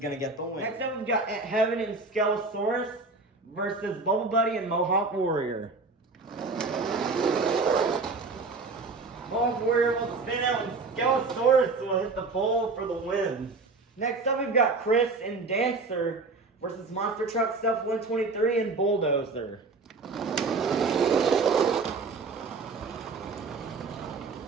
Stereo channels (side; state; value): left; quieter; 3.9 dB